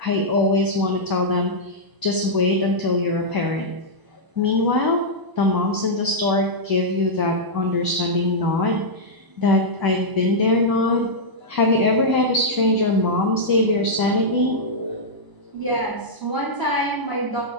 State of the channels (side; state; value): left; late; 1.0 ms